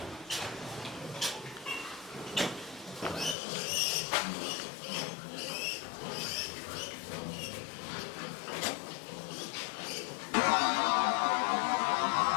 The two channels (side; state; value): right; drops out; at 3.4 s